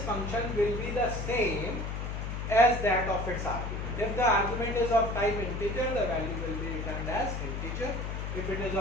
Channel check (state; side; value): noise; left; hum, 4 dB below the sound